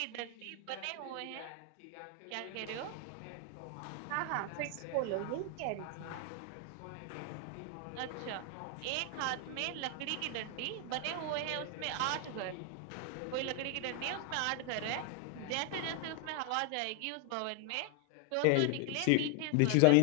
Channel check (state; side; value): different; both; correlation 0.00